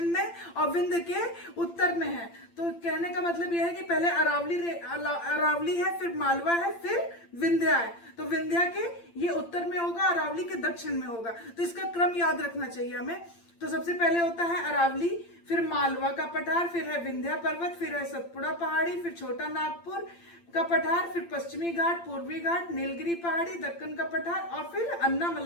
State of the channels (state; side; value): late; right; 8.8 ms